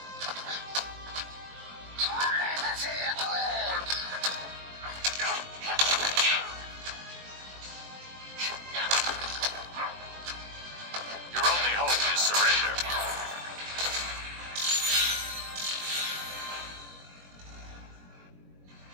Your only hope is surrender.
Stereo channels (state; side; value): late; left; 21 ms